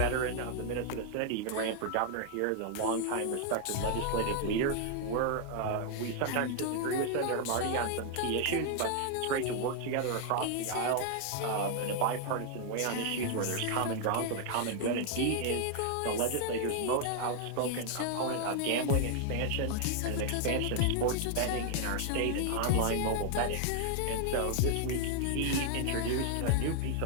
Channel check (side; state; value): both; different; correlation 0.00